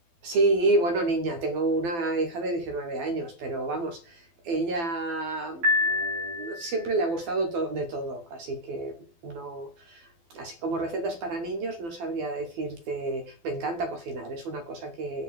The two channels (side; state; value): left; late; 12 ms